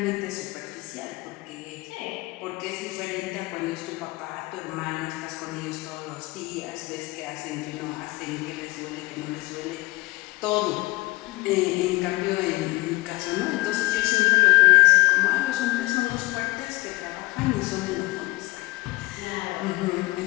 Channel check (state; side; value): quieter; right; 21.4 dB